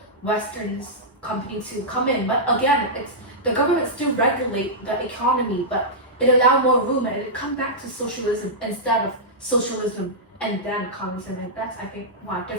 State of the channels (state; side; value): normal; both; correlation -0.12